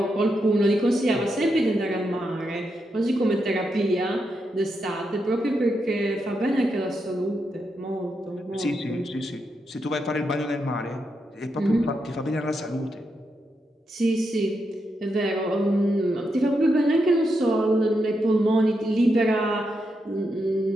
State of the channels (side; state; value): both; normal; correlation 0.84